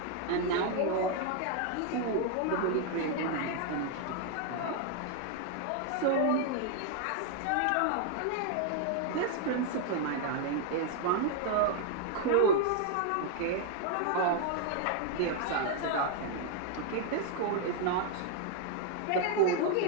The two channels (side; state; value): both; different; correlation 0.00